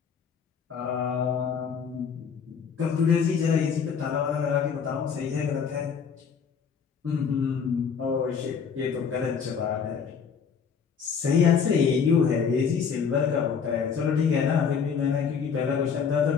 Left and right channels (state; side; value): quieter; right; 6.5 dB